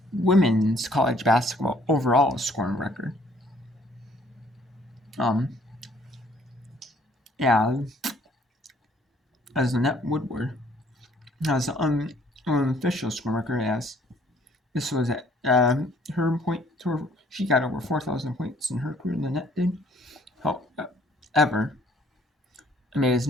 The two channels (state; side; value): normal; both; correlation 0.61